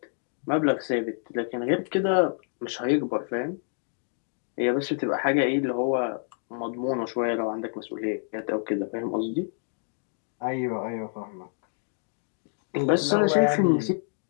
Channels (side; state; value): right; silent; 60 dB below the other